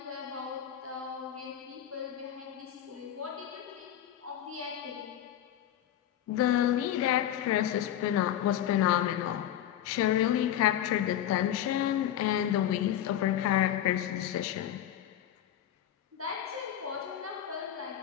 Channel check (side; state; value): right; quieter; 11.2 dB